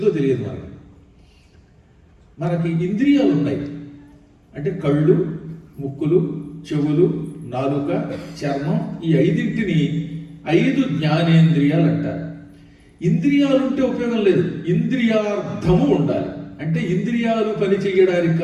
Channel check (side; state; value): both; identical; correlation 1.00